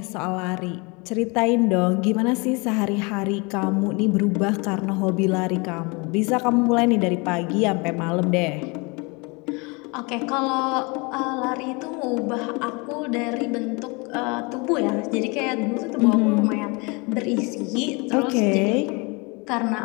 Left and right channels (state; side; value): quieter; right; 28.8 dB